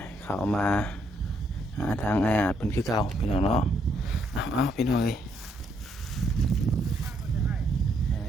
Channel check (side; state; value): both; normal; correlation 0.73